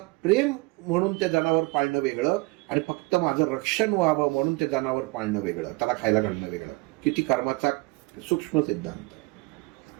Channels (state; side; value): quieter; left; 24.6 dB